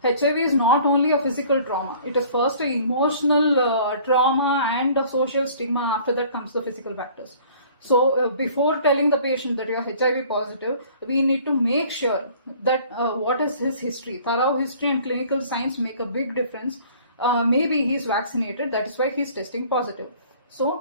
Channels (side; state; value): both; inverted; correlation -0.52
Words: HIV is not only a physical trauma, it is first an emotional trauma and a social stigma. After that comes the physical factors. So before telling the patient that you are HIV positive, we need to make sure that what is his history. Thorough history and clinical signs make a big difference. Maybe he is vaccinated, that is why he is testing positive.